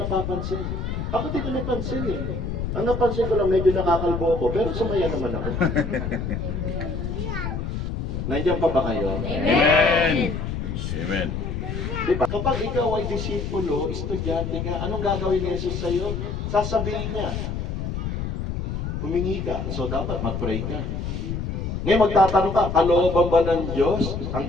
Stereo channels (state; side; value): noise; left; rumble, 3 dB below the sound